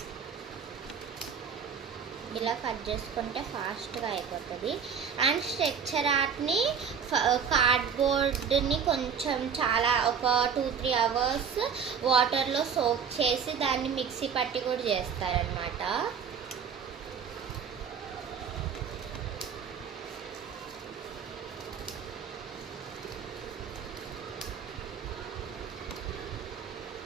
ఇలా కట్ చేసుకుంటే ఫాస్ట్గా అయిపోతుంది. అండ్ స్ట్రక్చర్ ఆర్ట్ని కార్డ్బోర్డ్ని కొంచెం ఒక 2-3 అవర్స్ వాటర్లో సోక్ చేసి దాన్ని మిక్సీ పట్టి కూడా చేస్తారనమాట.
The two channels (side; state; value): left; quieter; 6.8 dB